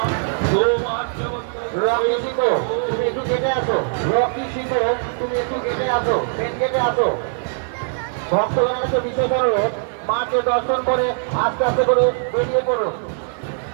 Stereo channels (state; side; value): silent; left; 57 dB below the other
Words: রকি শিখো, তুমি একটু কেটে আসো। রকি শিখো, তুমি একটু কেটে আসো, মেন গেটে আসো। ভক্তগণের কাছে বিশেষ অনুরোধ, মাকে দর্শন করে আস্তে আস্তে করে বেরিয়ে পড়ুন।